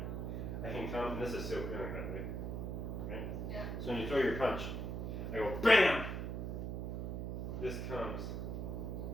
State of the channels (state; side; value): noise; right; hum, 3 dB below the sound